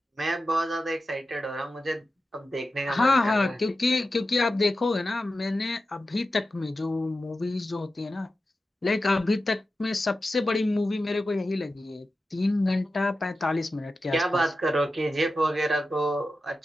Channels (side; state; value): both; normal; correlation 0.92